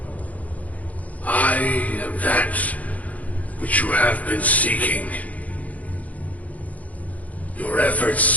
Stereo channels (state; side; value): late; right; 0.072 ms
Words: I am that which you have been seeking. Your